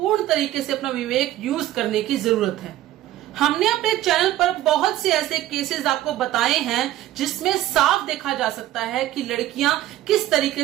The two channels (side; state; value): left; quieter; 14.1 dB